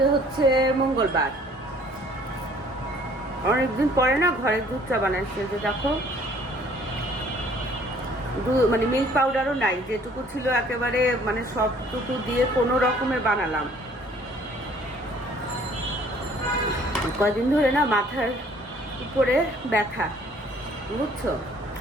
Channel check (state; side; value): normal; both; correlation 0.57